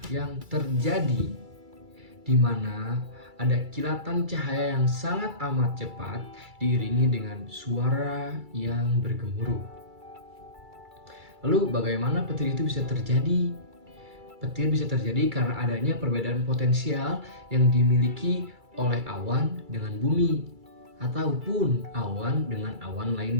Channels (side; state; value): left; late; 2.3 ms